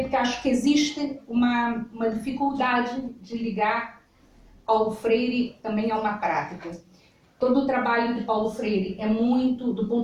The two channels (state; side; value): identical; both; correlation 1.00